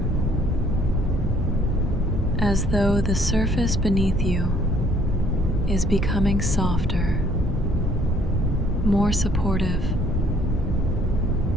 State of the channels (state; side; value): normal; both; correlation 0.61